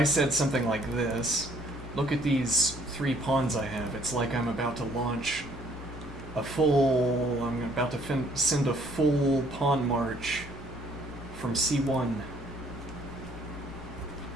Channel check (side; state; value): both; normal; correlation 0.62